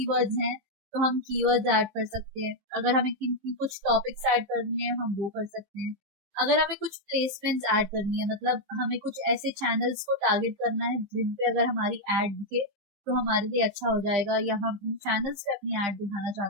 हैं तो हम कीवर्ड्स ऐड कर सकते हैं। अगर हमें किन कुछ टॉपिक्स ऐड करने हैं हम वो कर सकते हैं। अगर हमें कुछ प्लेसमेंट्स ऐड करनी है, मतलब हमें कुछ ऐसे चैनल्स को टारगेट करना है जिन पे अगर हमारी ऐड दिखे तो हमारे लिए अच्छा हो जाएगा, या हम उन चैनल्स पे अपनी ऐड दिखाना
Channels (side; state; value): left; late; 15 ms